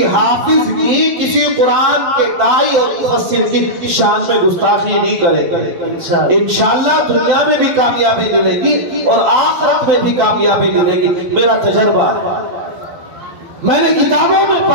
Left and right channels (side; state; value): left; late; 12 ms